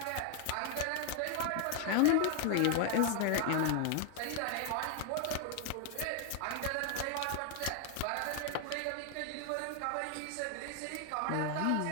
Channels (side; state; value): both; different; correlation 0.00